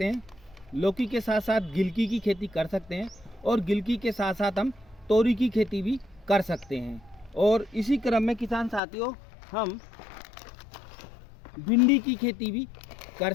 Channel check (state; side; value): drops out; right; at 8.8 s